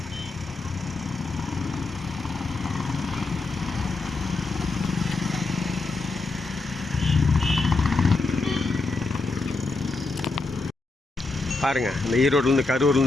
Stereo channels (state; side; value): quieter; right; 3.6 dB